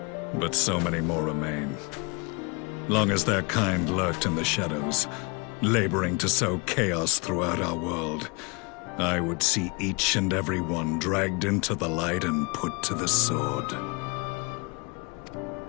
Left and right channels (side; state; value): right; quieter; 29.9 dB